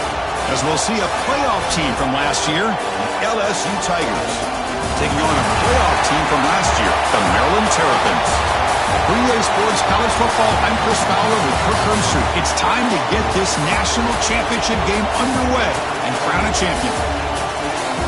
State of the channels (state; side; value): identical; both; correlation 1.00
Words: As we'll see a playoff team from last year, the LSU Tigers, taking on a playoff team from last year, the Maryland Terrapins. For EA Sports College Football, I'm Chris Fowler with Kirk Hermstreet. It's time to get this national championship game underway and crown a champion.